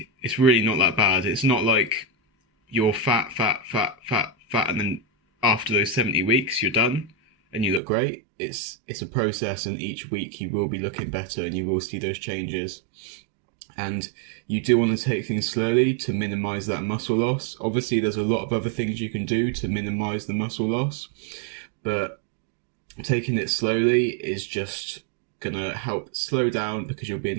not that bad. It's not like you're fat, and then after those 70 weeks, you're done and you look great. It's a process, and each week you will be looking better and you will see those changes. And you do want to take things slowly to minimize that muscle loss. Obviously, there's a lot of other things you can do to minimize the muscle loss, but taking it slowly is just going to help slow down, because you'll be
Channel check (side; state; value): left; drops out; at 7.8 s